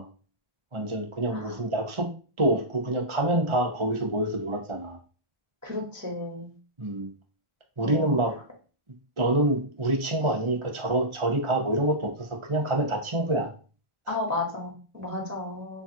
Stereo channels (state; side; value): late; left; 1.4 ms